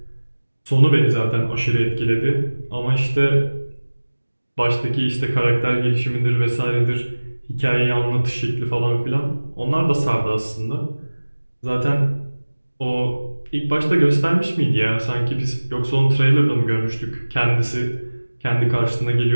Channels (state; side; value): inverted; both; correlation -1.00